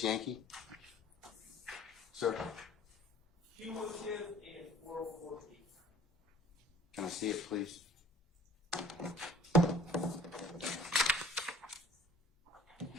Yankee? Sir, Cumulative and 404 P. can I see it, please?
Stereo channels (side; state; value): both; normal; correlation 0.51